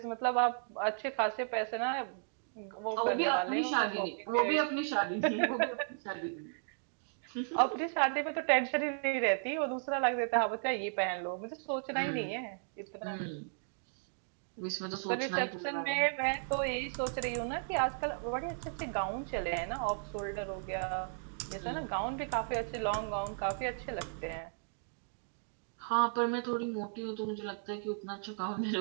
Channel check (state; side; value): silent; left; digital silence